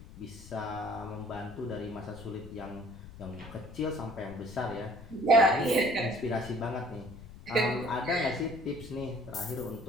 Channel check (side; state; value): left; noise; rumble, 16 dB below the sound